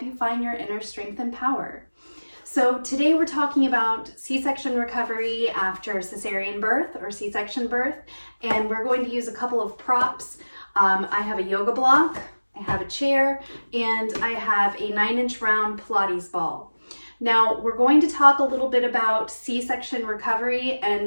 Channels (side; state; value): both; inverted; correlation -1.00